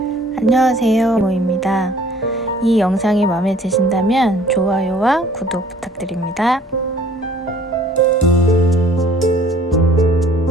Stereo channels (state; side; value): normal; both; correlation 0.54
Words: 모입니다. 이 영상이 마음에 드신다면 좋아요와 구독 부탁드립니다.